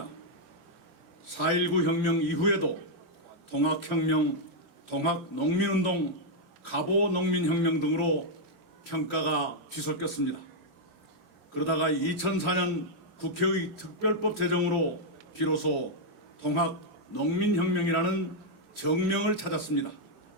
4.19 혁명 이후에도 통학혁명, 통학농민운동, 갑오농민혁명 등으로 평가가 뒤섞였습니다. 그러다가 2004년 국회의 특별법 제정으로 비로소 통합농민혁명이라는 정명을 찾았습니다.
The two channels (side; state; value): left; late; 23 ms